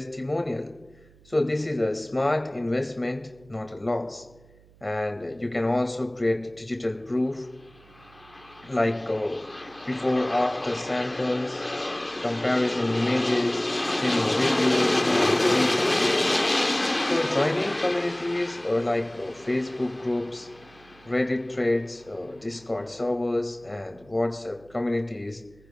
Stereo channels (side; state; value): right; noise; hum, 27 dB below the sound